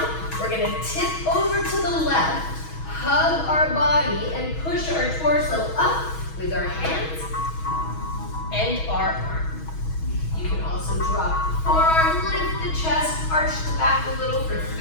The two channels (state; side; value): late; right; 6.2 ms